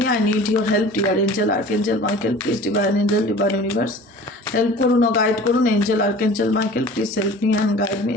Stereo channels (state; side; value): normal; both; correlation 0.43